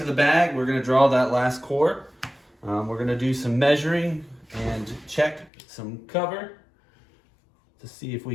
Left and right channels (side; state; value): right; drops out; at 5.5 s